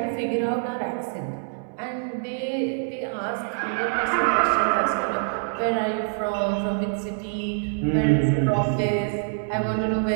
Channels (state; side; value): silent; left; 62 dB below the other